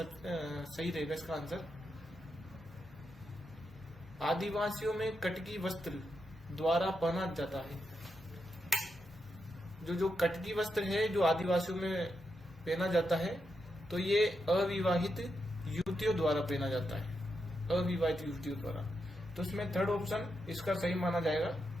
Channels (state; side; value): normal; both; correlation 0.85